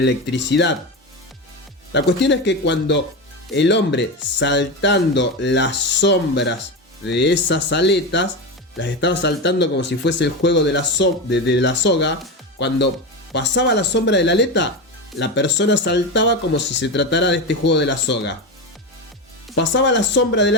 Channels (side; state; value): both; normal; correlation 0.18